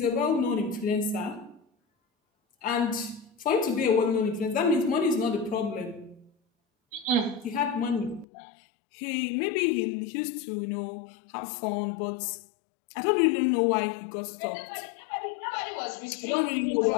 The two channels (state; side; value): drops out; right; at 8.2 s